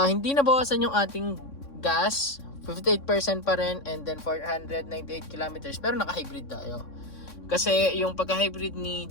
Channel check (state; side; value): late; right; 3.6 ms